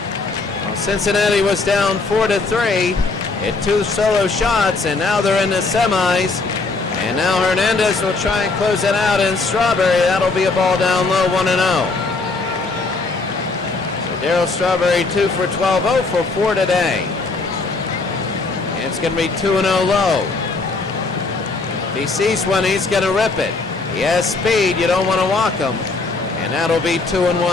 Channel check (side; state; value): right; quieter; 3.8 dB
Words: Well, Cincinnati was down 4-3 at 2 solo shots, and now they're in the semis. And now Hernandez will try and close it out in Strawberry. That'll be a ball down low, 1-0. So Darryl Strawberry 2 for 12, 0 for 4 today. And it's going to be 2-0 low. If he sees one, he's going to rip it. He has speed. You don't want to walk him. And that'll be